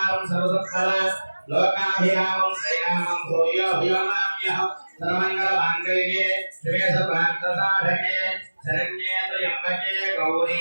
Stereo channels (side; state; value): both; inverted; correlation -1.00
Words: సర్వసత్ఫల లోకాభిరామం శ్రీరామం భూయో భూయమామ్యహం సర్వమంగళమాంగళ్యే శివే సర్వార్థసాధకే శరణ్యే త్రయంబకే